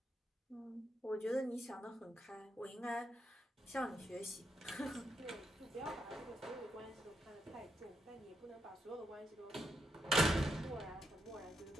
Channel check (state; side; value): normal; both; correlation 0.81